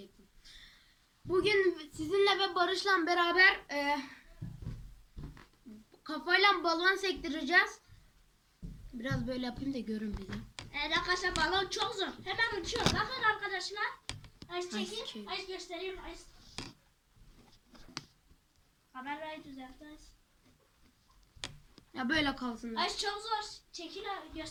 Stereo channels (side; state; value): both; identical; correlation 1.00